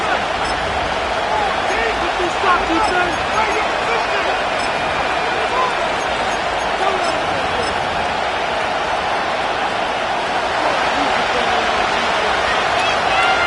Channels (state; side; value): identical; both; correlation 1.00